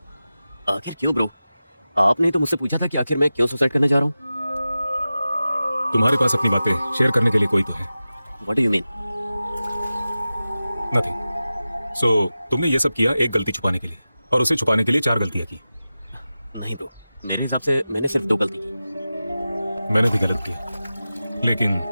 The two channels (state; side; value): inverted; both; correlation -0.94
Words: आखिर क्यों ब्रो? आपने तो मुझसे पूछा था कि आखिर मैं क्यों सुसाइड करने जा रहा हूँ। तुम्हारे पास अपनी बातें शेयर करने के लिए कोई तो है। What do you mean? Nothing. So तुमने ये सब किया एक गलती छुपाने के लिए, और उसे छुपाने के लिए 4 गलतियां की। नहीं ब्रो, मेरे हिसाब से मैंने सिर्फ 2 गलती की। मैंने भी गलत किया, लेकिन